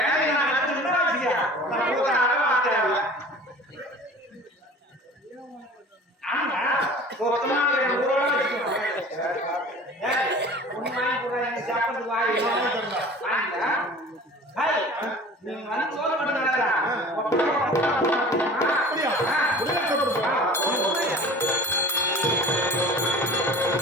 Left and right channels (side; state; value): both; normal; correlation 0.42